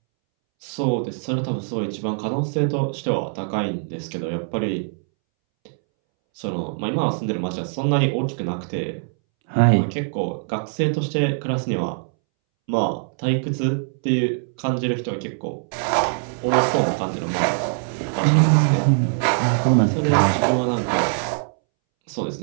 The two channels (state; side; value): silent; left; 63 dB below the other